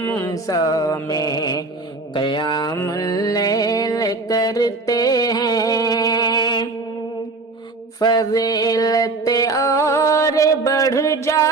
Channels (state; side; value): quieter; left; 3.5 dB